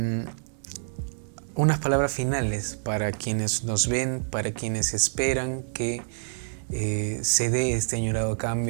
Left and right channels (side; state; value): left; silent; digital silence